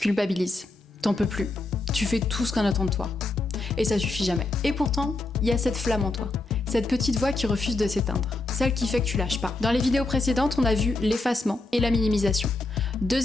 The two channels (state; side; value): quieter; right; 3.1 dB